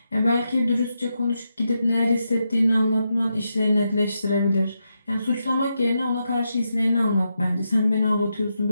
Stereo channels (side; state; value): both; inverted; correlation -0.85